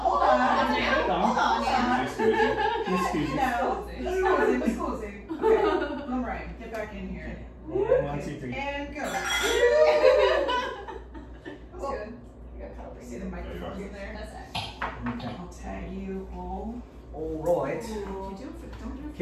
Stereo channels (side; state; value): both; identical; correlation 1.00